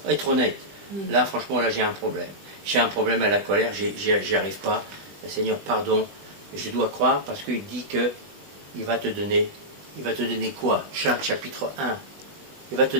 être honnête. Là, franchement, là, j'ai un problème. J'ai un problème à la colère, j'y arrive pas. Seigneur, pardon. Je dois croire parce qu'il dit que il va te donner quoi? Jacques chapitre 1. Il va te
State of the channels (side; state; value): left; late; 20 ms